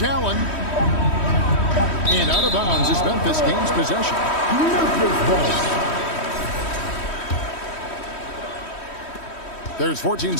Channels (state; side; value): late; right; 3.1 ms